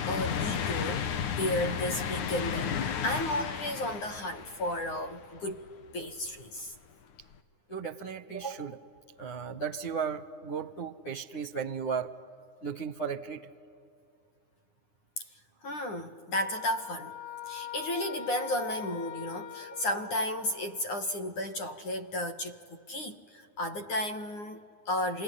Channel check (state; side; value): late; right; 9.8 ms